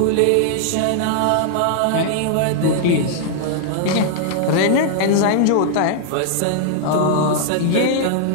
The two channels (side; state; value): both; different; correlation -0.01